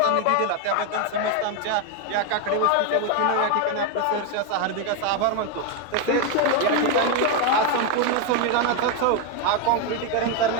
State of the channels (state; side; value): different; both; correlation 0.02